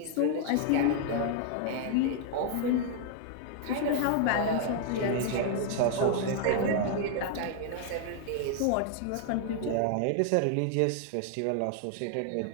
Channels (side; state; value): both; different; correlation 0.00